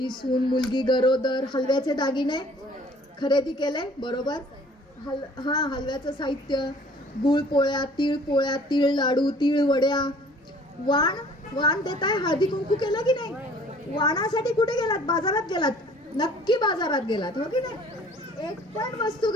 सून मुलगी गरोदर, हलव्याचे दागिने खरेदी केले, बरोबर? हलव्याचं साहित्य, गुळ पोळ्या, तीळ लाडू, तीळ वड्या. वाण देताय, हळदी कुंकू केलं की नाही? वाणासाठी कुठे गेलात? बाजारात गेलात? नक्की बाजारात गेलात, हो की नाही? एक पण वस्तू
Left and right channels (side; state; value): both; normal; correlation 0.53